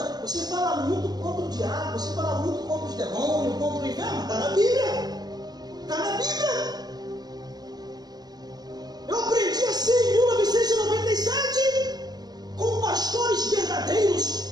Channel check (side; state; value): left; late; 0.19 ms